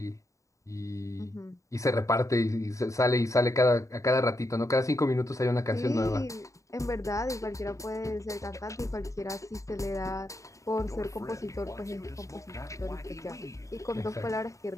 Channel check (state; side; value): late; right; 0.15 ms